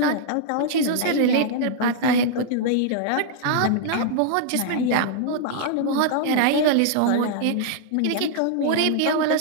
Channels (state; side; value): different; both; correlation -0.01